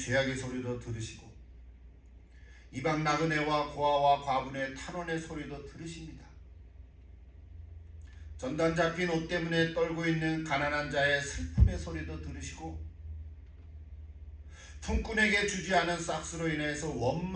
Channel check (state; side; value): identical; both; correlation 1.00